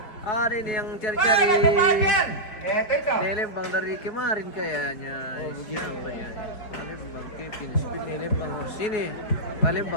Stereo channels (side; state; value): right; late; 4.6 ms